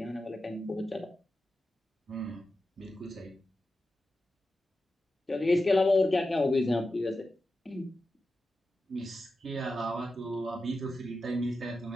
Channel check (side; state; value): both; normal; correlation 0.91